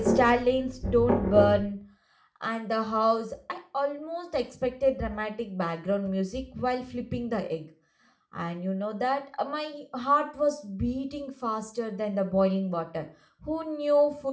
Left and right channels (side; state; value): both; identical; correlation 1.00